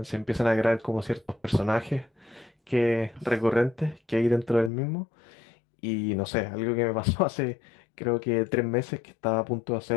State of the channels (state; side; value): drops out; right; at 4.7 s